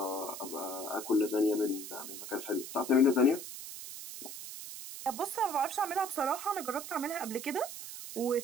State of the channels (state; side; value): noise; right; hiss, 10 dB below the sound